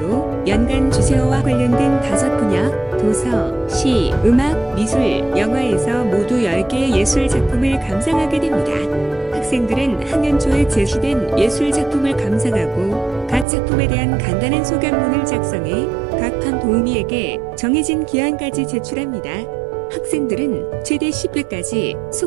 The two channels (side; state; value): left; drops out; at 13.5 s